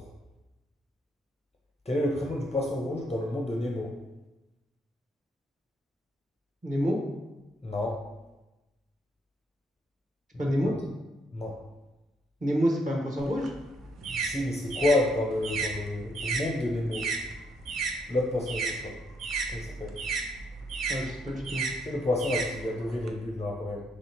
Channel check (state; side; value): normal; both; correlation 0.74